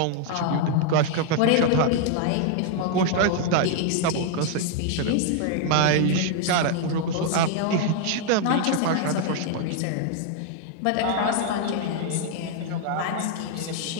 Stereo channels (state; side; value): different; both; correlation 0.00